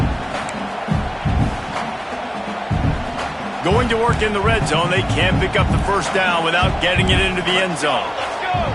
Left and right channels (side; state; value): both; identical; correlation 1.00